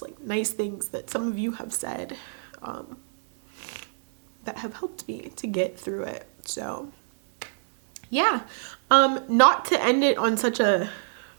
like nice things that some of you have said that have helped me to get through it. So yeah, not to end it on such a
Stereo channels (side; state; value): left; silent; digital silence